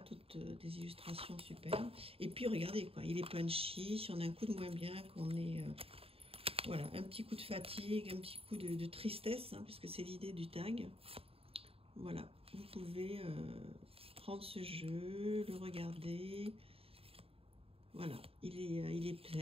toutes des illustrations superbes. Et puis, regardez, quoi, il est punchy. Si on a un coup de moins bien, qu'on est... voilà, un petit coup de fatigue, un petit coup de tristesse, hein, puisque c'est l'idée du tag. Voilà, vous pouvez prendre ce jeu, le regarder. Voilà, il est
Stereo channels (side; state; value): left; late; 0.28 ms